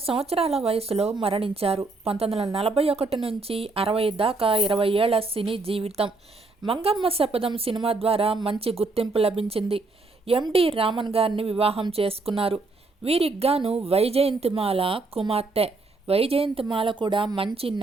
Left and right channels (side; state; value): left; quieter; 3.5 dB